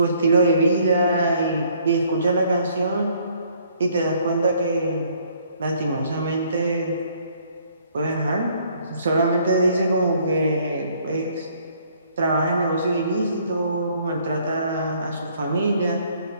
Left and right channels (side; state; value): both; inverted; correlation -0.63